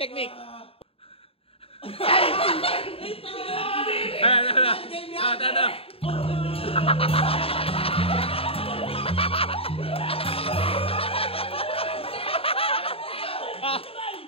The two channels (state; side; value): late; right; 0.27 ms